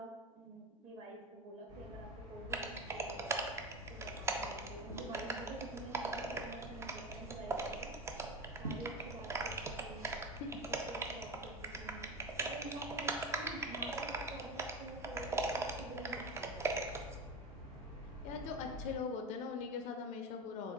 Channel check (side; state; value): both; normal; correlation 0.23